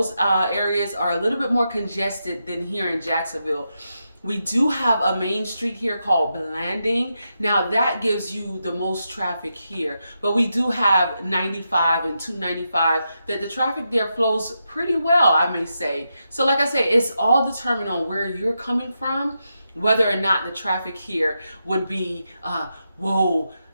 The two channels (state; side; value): inverted; both; correlation -0.86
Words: areas are a little bit more congested than here in Jacksonville. We do have a main street here called Blanding. Now that gives you the most traffic here, but we do have 95 and 295 that the traffic there flows pretty well, I may say. So like I say, it's all determined on where you're coming from, whether or not the traffic here would be,